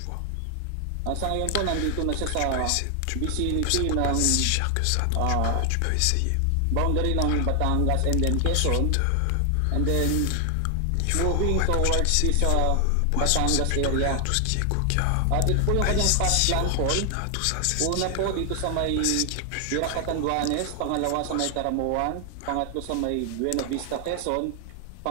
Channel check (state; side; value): different; both; correlation 0.00